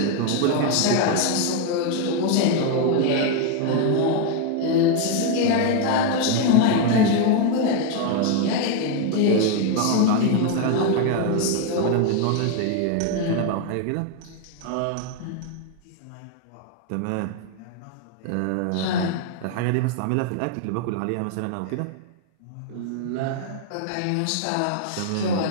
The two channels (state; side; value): different; both; correlation 0.01